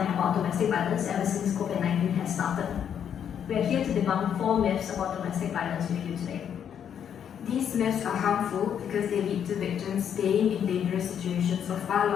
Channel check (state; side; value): quieter; right; 8.6 dB